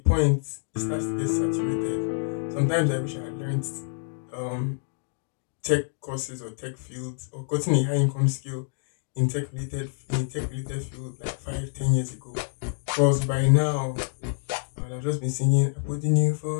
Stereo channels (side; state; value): right; silent; digital silence